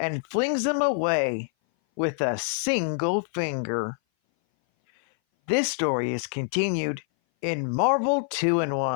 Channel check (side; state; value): right; silent; 58 dB below the other